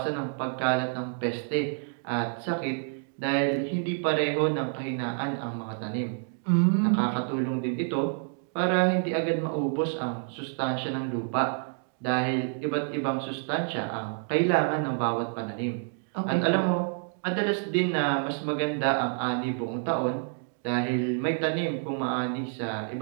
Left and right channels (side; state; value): left; silent; 59 dB below the other